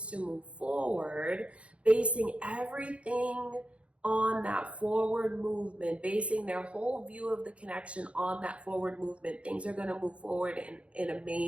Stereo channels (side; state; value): left; late; 0.061 ms